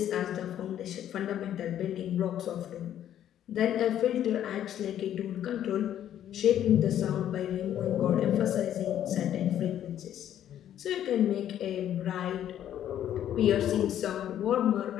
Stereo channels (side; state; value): right; quieter; 10.9 dB